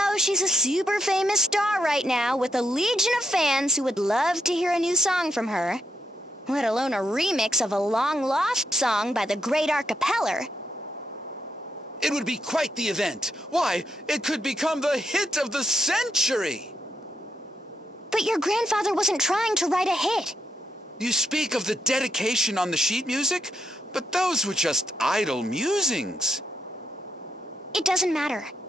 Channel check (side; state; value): both; normal; correlation 0.81